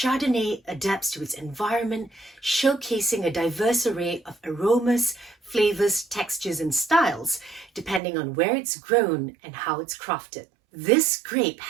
adapts to its environment, showcasing a diverse array of aromas, flavors, textures, and styles, depending on where it's grown and how it's crafted. This grape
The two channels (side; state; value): left; drops out; at 8.0 s